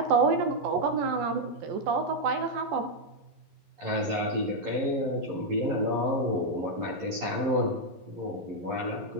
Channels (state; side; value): late; left; 11 ms